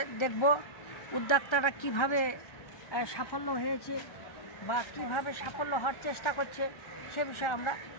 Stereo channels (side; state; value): right; late; 1.3 ms